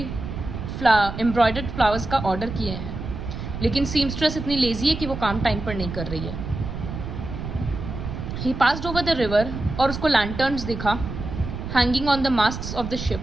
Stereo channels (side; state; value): right; noise; rumble, 7 dB below the sound